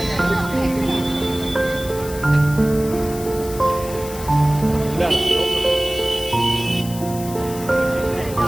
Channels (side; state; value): left; noise; hiss, 13 dB below the sound